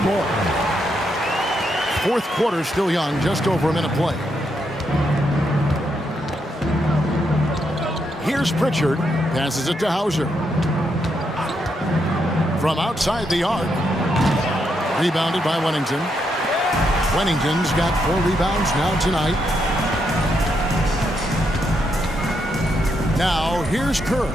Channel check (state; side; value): normal; both; correlation 0.79